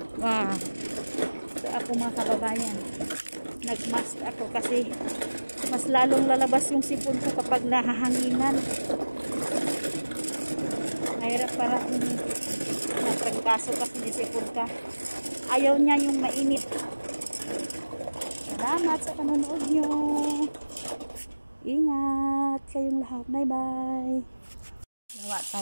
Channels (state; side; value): inverted; both; correlation -1.00